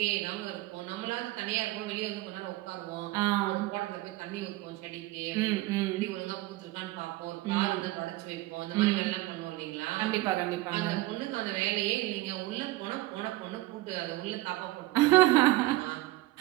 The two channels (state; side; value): quieter; left; 18.6 dB